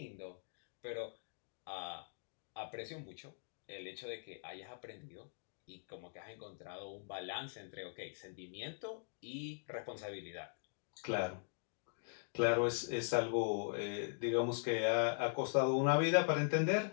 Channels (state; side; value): silent; right; digital silence